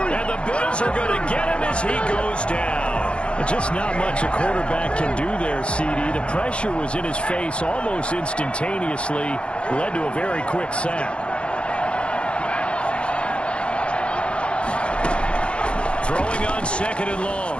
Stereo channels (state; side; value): late; right; 0.059 ms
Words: And the Bills are going to get him as he goes down. Just not much a quarterback can do there, CD. The pressure was in his face almost instantaneously, led to a very quick sack. Throwing on 2nd and long.